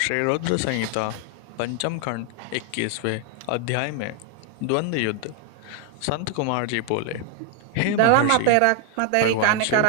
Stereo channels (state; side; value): different; both; correlation 0.01